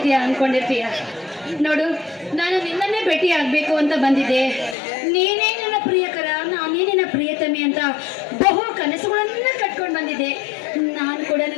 ನೋಡು, ನಾನು ನಿನ್ನನ್ನೇ ಭೇಟಿ ಆಗ್ಬೇಕು ಅಂತ ಬಂದಿದ್ದೆ. ನೀನೇ ನನ್ನ ಪ್ರಿಯಕರ, ನಾನೇ ನಿನ್ನ ಪ್ರಿಯತಮಿ ಅಂತ ಬಹು ಕನಸುಗಳನ್ನ ಕಟ್ಕೊಂಡು ಬಂದಿದ್ದೆ. ನಾನು ಕೂಡ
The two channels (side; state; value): right; drops out; at 4.8 s